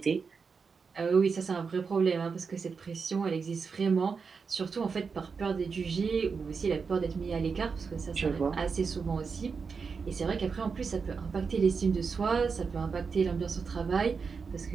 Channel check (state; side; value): quieter; left; 5.3 dB